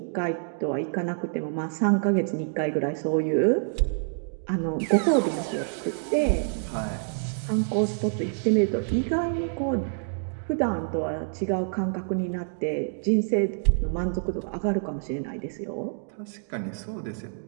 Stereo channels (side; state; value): left; silent; digital silence